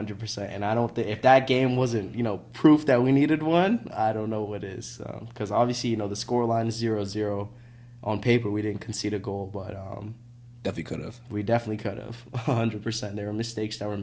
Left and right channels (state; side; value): identical; both; correlation 1.00